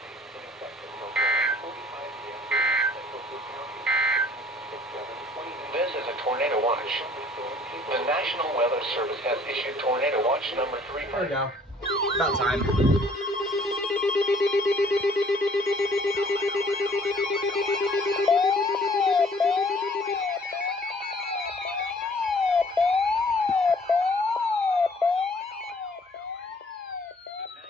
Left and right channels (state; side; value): normal; both; correlation 0.57